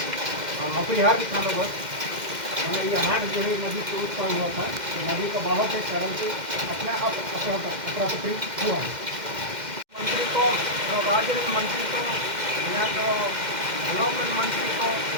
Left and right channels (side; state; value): left; late; 2.1 ms